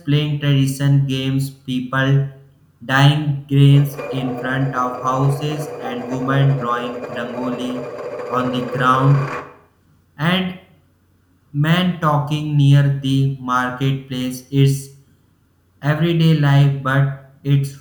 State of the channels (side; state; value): both; identical; correlation 1.00